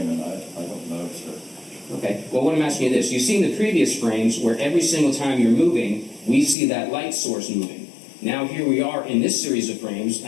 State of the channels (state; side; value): drops out; right; at 6.6 s